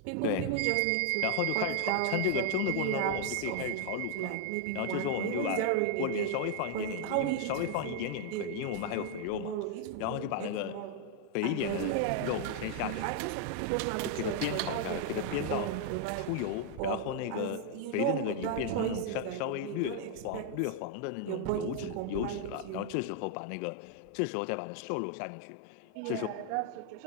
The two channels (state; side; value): different; both; correlation 0.00